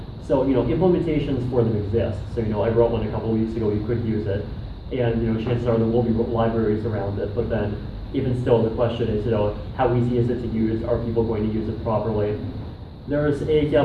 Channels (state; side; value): identical; both; correlation 1.00